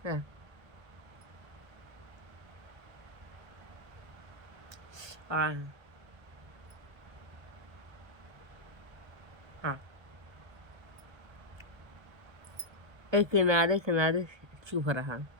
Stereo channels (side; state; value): left; late; 1.3 ms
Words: हाँ हाँ, एक किनारे चुभ रहा,